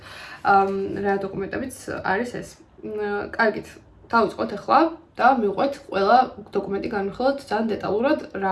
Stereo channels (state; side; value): identical; both; correlation 1.00